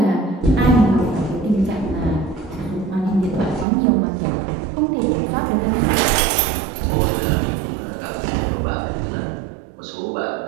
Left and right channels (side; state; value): left; drops out; at 3.7 s